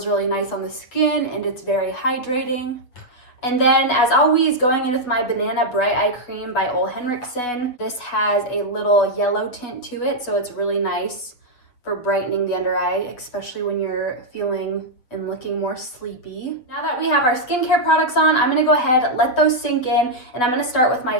really nice on the skin and it's very hydrating. And then as always, going in with my Banana Bright Eye Cream by Ole Henriksen. This has a little yellow tint to it, so it's really nice for brightening the under eye, especially when you're feeling and looking more sleepy. Now that we have our skincare products on, I'm gonna go ahead, let those sink in, and I'm gonna start with my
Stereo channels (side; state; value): right; late; 7.9 ms